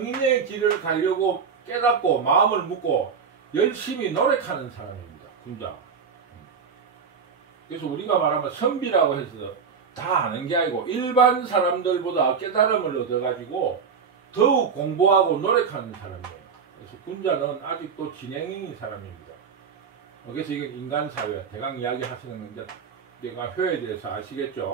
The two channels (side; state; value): left; quieter; 6.1 dB